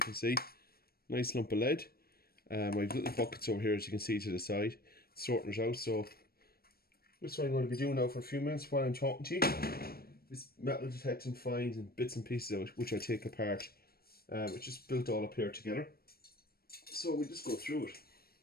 can see, nice lump of lead. I have little buckets over here, as you can see to the side, sorting it out. So this is what I'm going to be doing now for a few minutes while I'm talking to you. This metal detecting finds and bits and pieces of it, which I take apart, which is built all up here together. So we just go through it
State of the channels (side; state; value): right; late; 0.44 ms